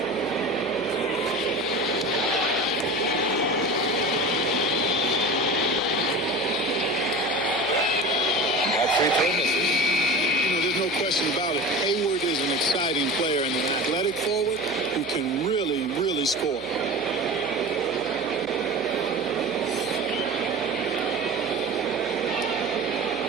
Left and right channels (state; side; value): noise; right; hum, 24 dB below the sound